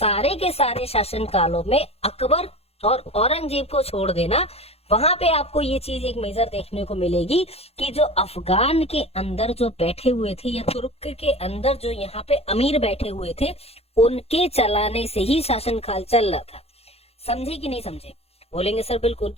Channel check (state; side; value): late; right; 0.29 ms